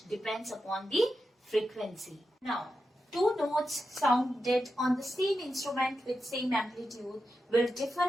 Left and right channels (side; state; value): both; normal; correlation 0.88